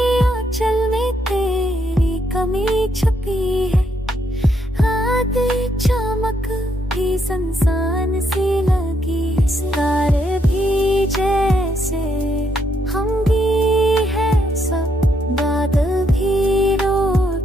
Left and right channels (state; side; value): normal; both; correlation 0.76